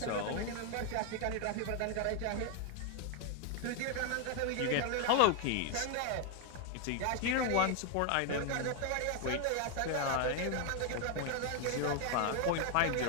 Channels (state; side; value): different; both; correlation 0.01